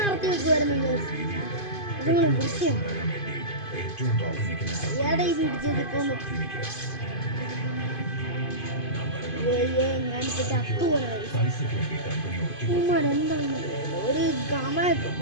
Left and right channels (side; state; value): right; late; 2.5 ms